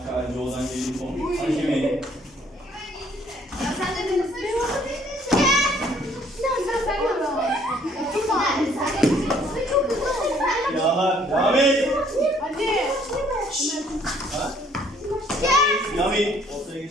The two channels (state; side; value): normal; both; correlation 0.62